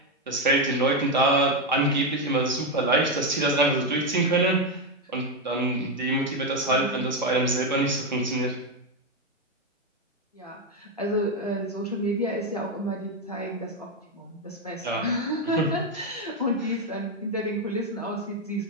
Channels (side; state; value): both; normal; correlation 0.07